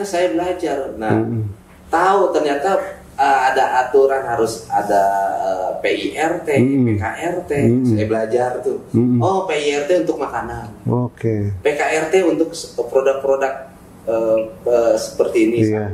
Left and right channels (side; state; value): both; identical; correlation 1.00